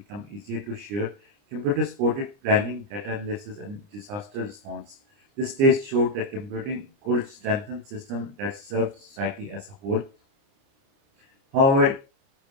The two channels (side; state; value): left; late; 30 ms